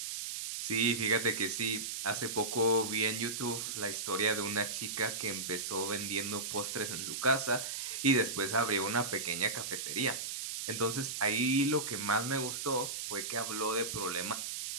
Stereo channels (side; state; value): right; noise; hiss, 4 dB below the sound